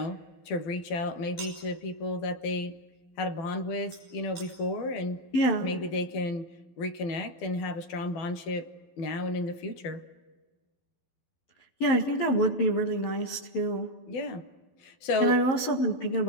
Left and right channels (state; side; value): late; right; 12 ms